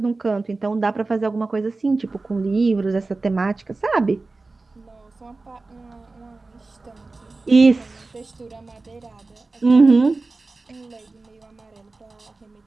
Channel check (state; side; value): quieter; left; 3.5 dB